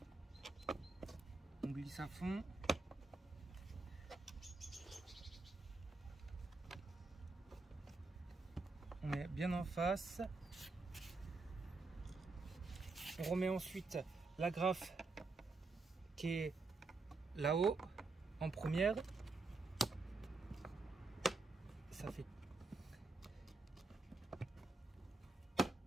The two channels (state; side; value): quieter; left; 3.6 dB